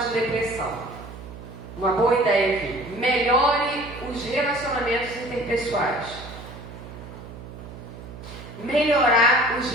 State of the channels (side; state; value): right; noise; hum, 14 dB below the sound